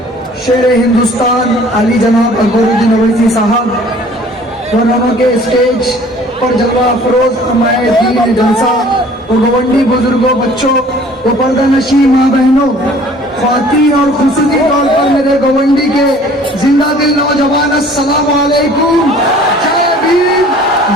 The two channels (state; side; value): normal; both; correlation 0.52